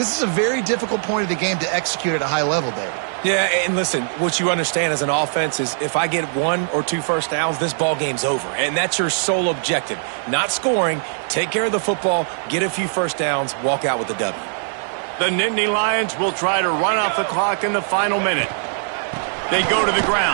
is a very difficult point of the game to execute at a high level, David. Yeah, and listen, what you understand as an offense is if I get 1 or 2 first downs, this ball game's over. And that's your sole objective. Not scoring, take care of the football, get a few first downs, walk out with the W. The Nittany Lions will try to run off the clock in the final minute. They go to the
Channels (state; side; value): silent; left; 63 dB below the other